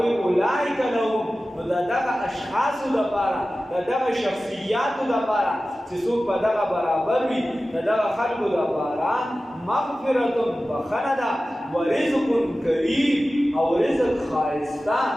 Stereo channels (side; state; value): both; normal; correlation 0.95